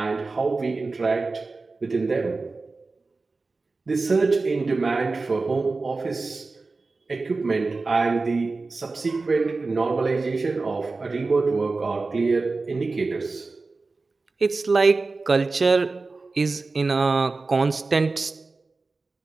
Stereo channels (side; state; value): left; quieter; 3.8 dB